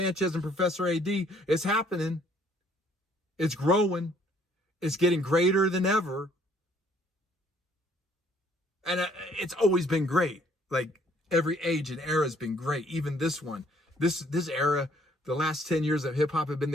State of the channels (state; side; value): normal; both; correlation 0.62